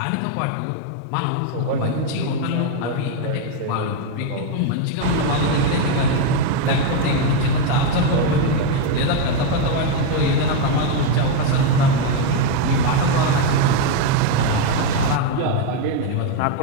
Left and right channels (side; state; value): both; different; correlation 0.02